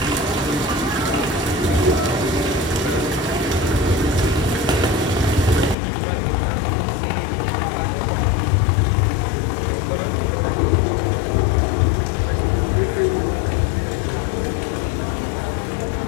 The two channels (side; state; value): right; drops out; at 5.8 s